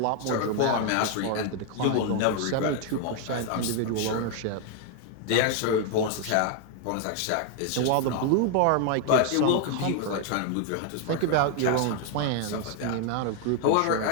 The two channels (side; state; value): both; different; correlation 0.00